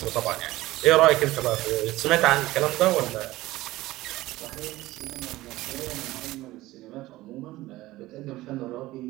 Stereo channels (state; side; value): quieter; left; 17.6 dB